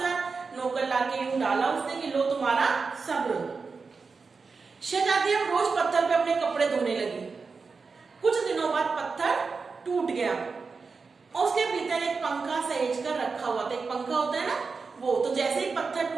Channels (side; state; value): left; quieter; 4.7 dB